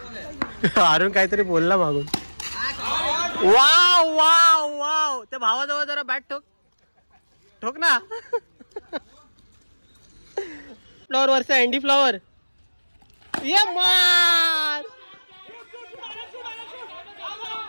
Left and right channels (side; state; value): both; inverted; correlation -1.00